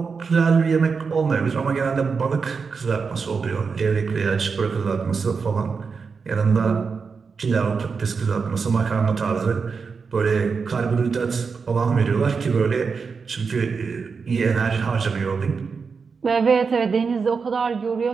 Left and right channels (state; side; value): quieter; left; 5.3 dB